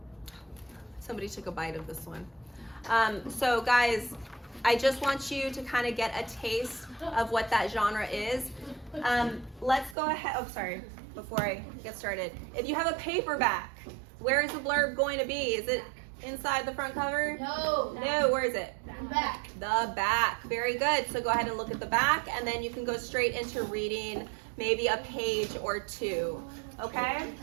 Somebody took a bite of this one. So guys, I just want you to kind of get a taste of what that genre is. Let's go ahead, oh sorry, before I get started. If you have a paperback, where is the blurb going to be? Is it inside the front cover? No. No, where is it? Back. The back. Very good. So go ahead and look at the back and then you can go straight into reading maybe a page or two. Okay?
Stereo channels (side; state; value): left; drops out; at 10.0 s